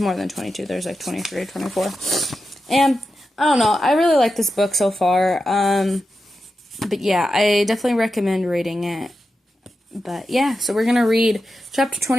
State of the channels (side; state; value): both; normal; correlation 0.90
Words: than 22. There's like 23 or 24. And I don't know. I really like this book so far. But yeah, I definitely recommend reading it. But yeah, so we're going to read chapter